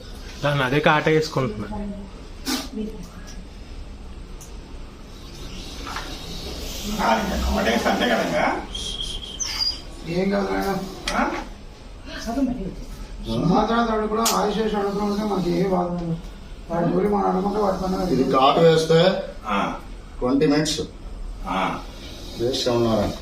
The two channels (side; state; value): both; identical; correlation 1.00